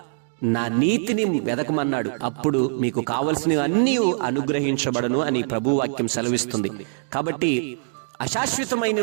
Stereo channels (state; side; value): silent; left; digital silence